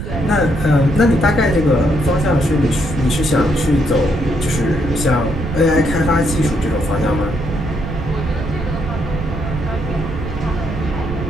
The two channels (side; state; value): right; noise; rumble, 6 dB below the sound